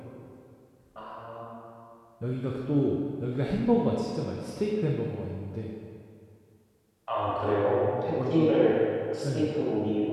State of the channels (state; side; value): identical; both; correlation 1.00